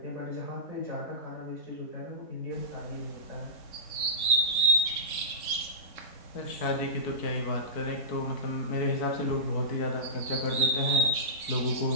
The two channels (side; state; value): right; late; 3.7 ms